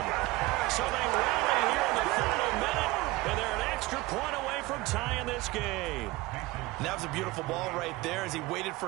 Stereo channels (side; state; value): left; quieter; 20.4 dB